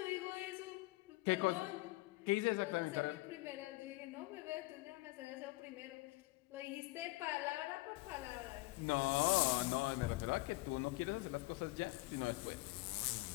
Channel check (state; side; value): quieter; right; 21.9 dB